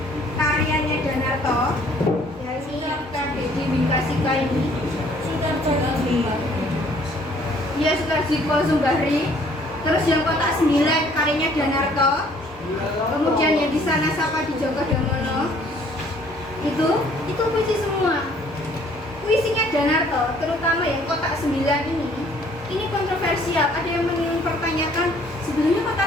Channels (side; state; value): both; normal; correlation 0.59